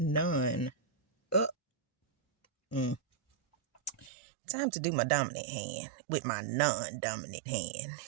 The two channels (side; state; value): left; drops out; at 4.1 s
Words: Mm. Time to do my dominant hand with my non-dominant hand.